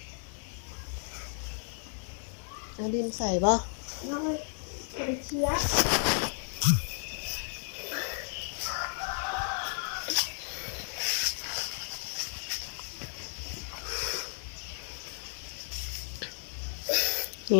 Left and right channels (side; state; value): right; silent; digital silence